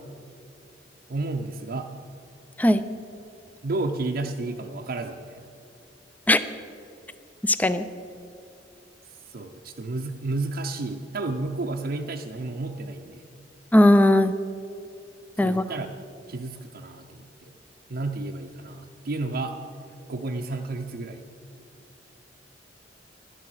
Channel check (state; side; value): normal; both; correlation 0.76